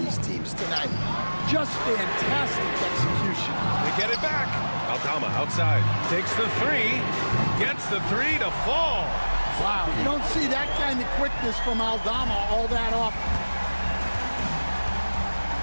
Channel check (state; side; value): inverted; both; correlation -1.00